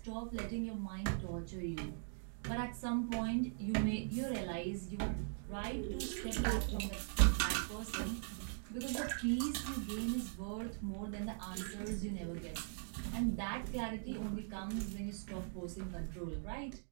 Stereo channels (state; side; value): silent; left; digital silence